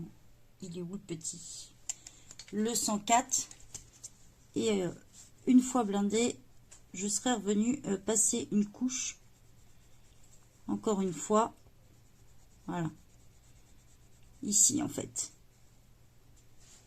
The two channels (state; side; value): identical; both; correlation 1.00